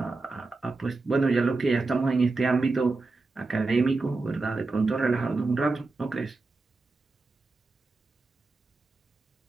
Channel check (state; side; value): quieter; left; 3.6 dB